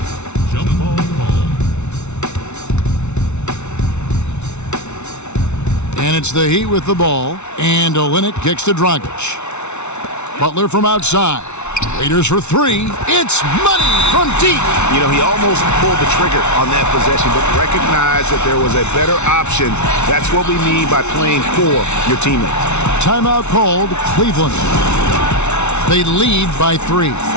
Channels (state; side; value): late; right; 0.82 ms